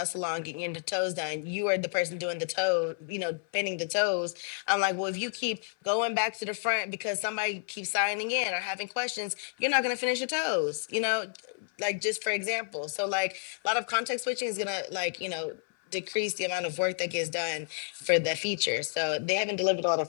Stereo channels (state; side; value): silent; right; 58 dB below the other